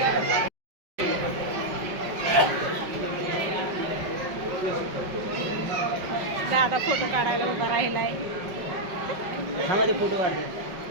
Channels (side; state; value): left; late; 5.3 ms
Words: दादा फोटो काढायला उभा राहिलाय. फोटो